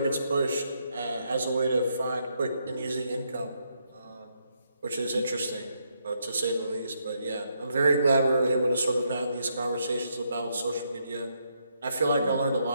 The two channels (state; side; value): inverted; both; correlation -0.77